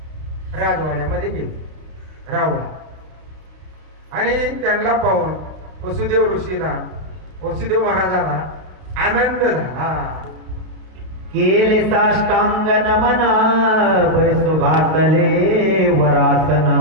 राजवाड्यामध्ये गेले रावळा, आणि त्यांना पाहून वसुदेव महाराजाला आनंद झाला. केले साष्टांग नमन, बैसो घातले वरासन,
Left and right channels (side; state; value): left; late; 32 ms